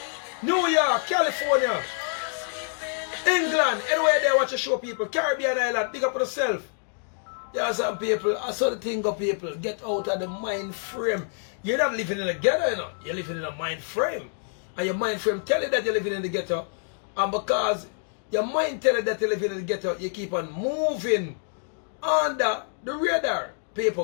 New York, California, England, anywhere there watch a show, people. Caribbean Island, big up yourself. Yeah, some people, I saw the thing of people, get out of the mind frame. You're not living in a ghetto, you know. You're living in a mind frame. And your mind frame tell you that you're living in the ghetto. And because your mind tell you that you're living in the ghetto, you keep on moving under the radar.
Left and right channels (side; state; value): right; silent; digital silence